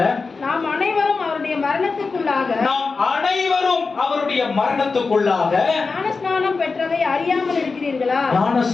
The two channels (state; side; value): quieter; right; 4.4 dB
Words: நாம் அனைவரும் அவருடைய மரணத்துக்குள்ளாக ஞானஸ்நானம் பெற்றதை அறியாமல் இருக்கிறீர்களா?